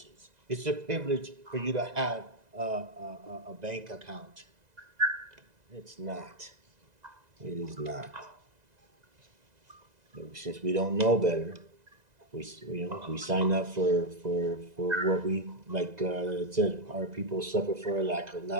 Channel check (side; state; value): left; late; 2.0 ms